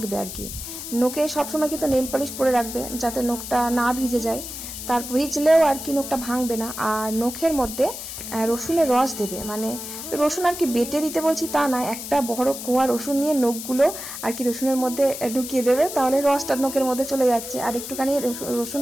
আর কি। নখে সবসময় কিন্তু নেল পলিশ পরে রাখবে, যাতে নখটা না ভিজে যায়, তার ভিজলেও আর কি নখটা ভাঙবে না। আর নখের মধ্যে রসুনের রস দেবে, মানে রসুন আর কি বেটে দিতে বলছি তা না, একটা বড় কোয়া রসুন নিয়ে নখগুলো আর কি রসুনের মধ্যে ঢুকিয়ে দেবে, তাহলে রসটা নখের মধ্যে চলে যাচ্ছে। আর একটুখানি রসুন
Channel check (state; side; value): noise; left; hiss, 9 dB below the sound